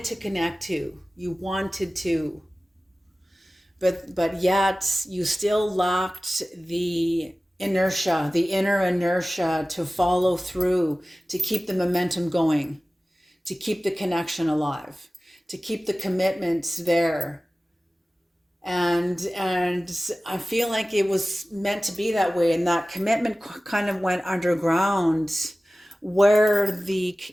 to connect to. You wanted to. But yet you still lacked the inertia, the inner inertia to follow through, to keep the momentum going, to keep the connection alive, to keep the commitment there. And I feel like it was meant to be that way, and that commitment kind of went underground, where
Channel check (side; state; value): both; normal; correlation 0.97